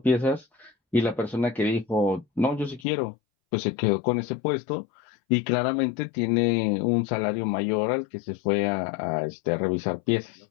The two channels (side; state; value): right; drops out; at 2.9 s